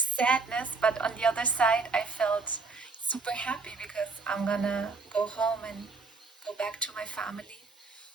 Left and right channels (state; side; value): quieter; left; 4.1 dB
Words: but on the other side, I felt super happy because I'm gonna go home and go back to my family.